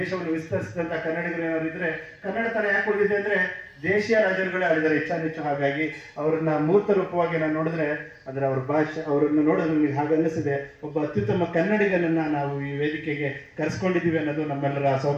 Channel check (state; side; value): identical; both; correlation 1.00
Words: ವಿಸ್ತರಿಸಿದಂತ ಕನ್ನಡಿಗರು ಏನಾದ್ರು ಇದ್ರೆ, ಕನ್ನಡ ತರ ಯಾಕೆ ಉಳಿದಿದೆ ಅಂದ್ರೆ ದೇಶೀಯ ರಾಜರುಗಳೇ ಆಡಿದ್ದಾರೆ ಹೆಚ್ಚು. ಹಾಗಾಗಿ ಅವ್ರನ್ನ ಮೂರ್ತ ರೂಪವಾಗಿ ನಾನು ನೋಡಿದ್ರೆ ಅಂದ್ರೆ ಅವ್ರ ಭಾಷೆ, ಅವ್ರನ್ನ ನೋಡೋದು ನಮಗೆ ಹಾಗೆ ಅನ್ನಿಸಿದೆ. ಒಬ್ಬ ಅತ್ಯುತ್ತಮ ಕನ್ನಡಿಗನನ್ನ ನಾವು ಈ ವೇದಿಕೆಗೆ ಕರೆಸ್ಕೊಂಡಿದ್ದೀವಿ ಅನ್ನೋದು ನಮ್ಮೆಲ್ಲರ